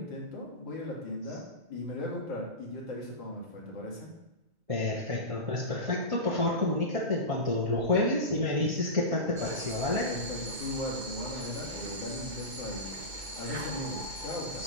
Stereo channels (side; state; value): left; late; 2.2 ms